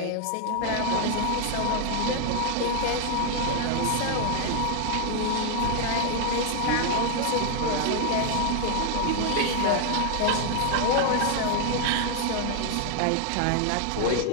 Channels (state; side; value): different; both; correlation 0.00